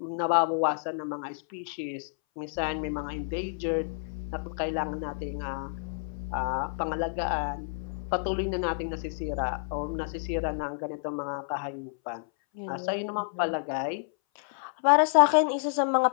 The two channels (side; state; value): right; silent; 58 dB below the other